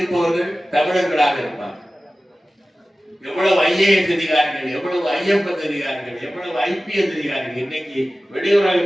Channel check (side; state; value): both; normal; correlation 0.96